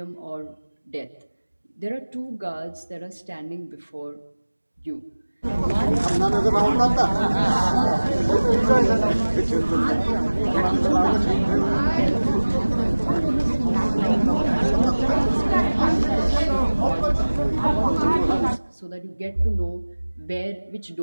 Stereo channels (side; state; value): both; inverted; correlation -1.00